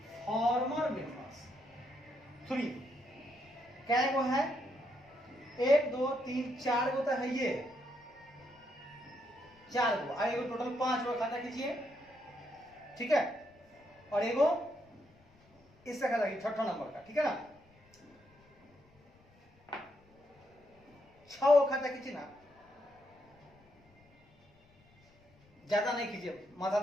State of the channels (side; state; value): left; noise; rumble, 30 dB below the sound